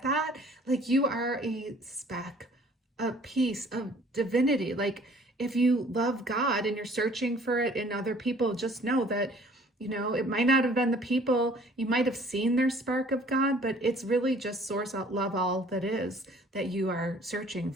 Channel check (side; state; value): both; normal; correlation 0.55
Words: that? You are a speck, a piece of divinity. If you love God and you're searching for it in other people, just know that, it might not have been the people, you might have seen their spark of God, but it's really just source, love, all that is that you are searching